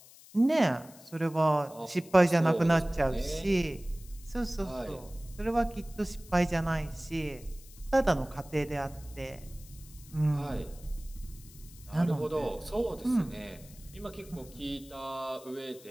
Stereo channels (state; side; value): noise; left; hiss, 21 dB below the sound